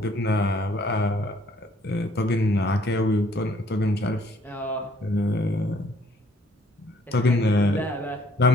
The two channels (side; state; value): both; normal; correlation 0.62